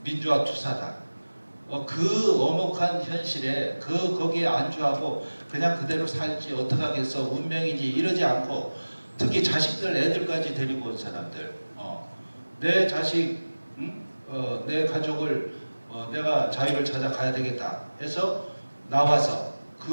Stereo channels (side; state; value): both; inverted; correlation -1.00